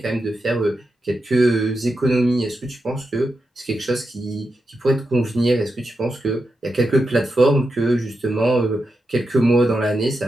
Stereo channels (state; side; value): normal; both; correlation 0.88